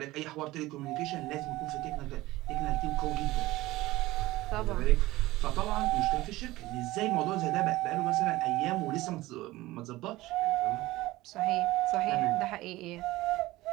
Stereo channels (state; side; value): quieter; left; 18.2 dB